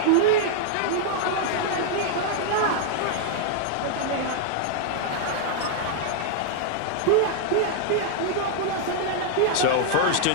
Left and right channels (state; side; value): different; both; correlation -0.01